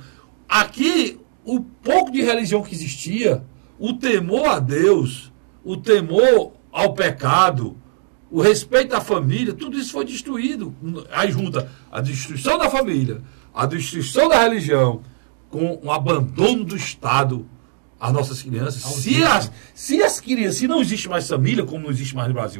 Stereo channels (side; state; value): left; silent; digital silence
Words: Aqui, o pouco de religião que existia, o temor a Deus, o temor ao pecado, o respeito à família, tudo isso foi destruído. Aí junta a destruição da família, a destruição da religião, com o abandono do Estado às nossas crianças. Se não existe mais família, como não existe mais no